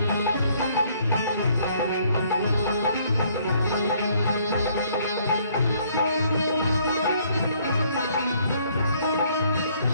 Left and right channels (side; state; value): both; inverted; correlation -0.64